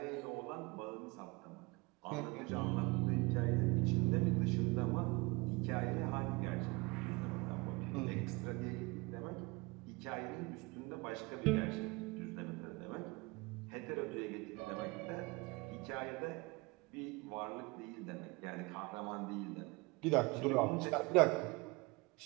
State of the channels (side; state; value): left; quieter; 25.5 dB